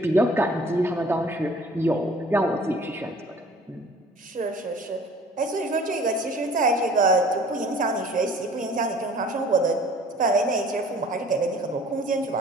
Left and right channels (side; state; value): both; normal; correlation 0.50